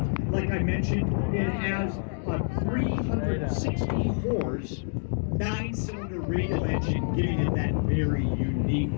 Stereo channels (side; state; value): right; silent; 60 dB below the other